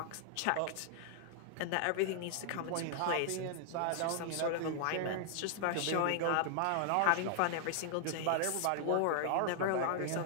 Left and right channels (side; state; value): both; different; correlation 0.00